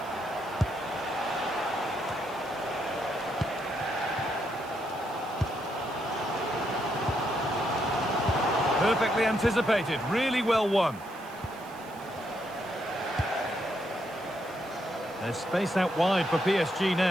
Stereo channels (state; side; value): noise; right; hiss, 23 dB below the sound